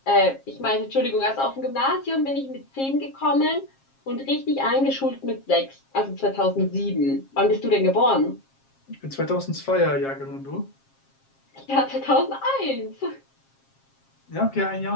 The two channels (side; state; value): right; late; 7.4 ms